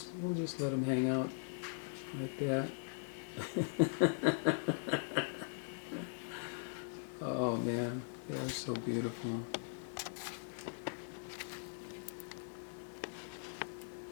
let them hang out like that. Oh man, they are so beautiful.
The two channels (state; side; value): silent; right; digital silence